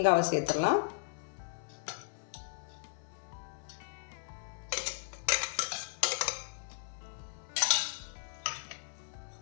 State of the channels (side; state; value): right; silent; 54 dB below the other